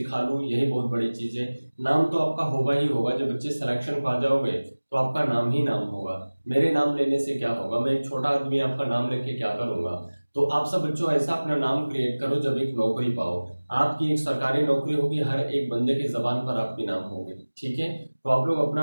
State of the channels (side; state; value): both; inverted; correlation -1.00